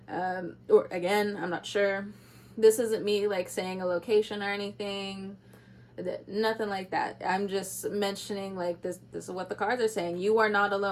Or again, I'm not sure. This isn't me like saying a location or anything. Nothing like that. I'm just mentioning like this is what the cards are saying. You are not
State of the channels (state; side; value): identical; both; correlation 1.00